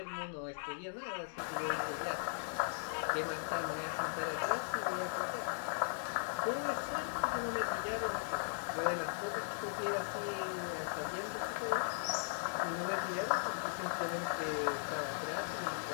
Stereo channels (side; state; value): right; silent; digital silence